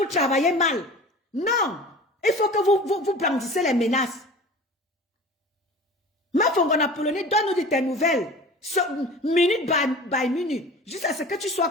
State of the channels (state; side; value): normal; both; correlation 0.38